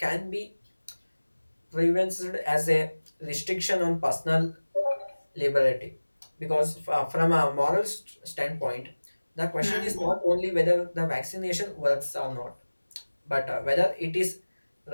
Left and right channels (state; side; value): inverted; both; correlation -1.00